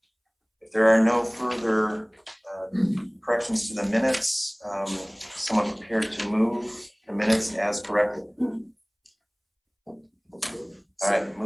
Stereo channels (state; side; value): identical; both; correlation 1.00